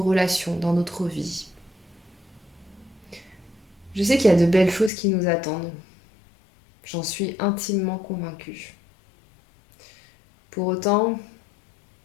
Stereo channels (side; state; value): right; drops out; at 4.9 s